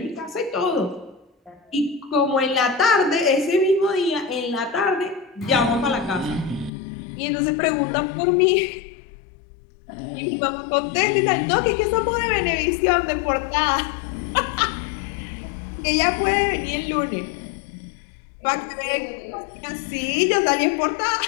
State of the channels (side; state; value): right; drops out; at 6.7 s